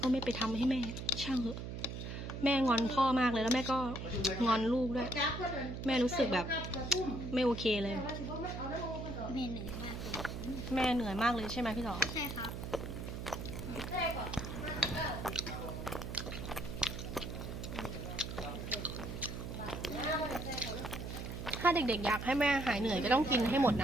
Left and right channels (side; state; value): right; noise; hum, 6 dB below the sound